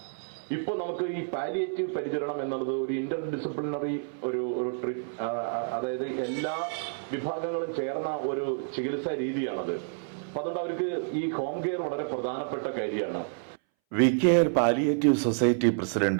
ഇപ്പൊ നമുക്ക് ഈ പാലിയേറ്റീവ് പരിചരണം എന്നുള്ളത് ഒരു ഇന്റർ ഡിസിപ്ലിനറി ഒരു അതായത് എല്ലാ വിഭാഗങ്ങളും ചേർന്ന ഒരു ചികിത്സാ രീതിയാണത്. അപ്പൊ അതുകൊണ്ട് അവർക്ക് ഈ ഹോം കെയർ വളരെ പ്രധാനപ്പെട്ട കാര്യമാണ്. VCare palliative society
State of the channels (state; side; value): silent; left; 58 dB below the other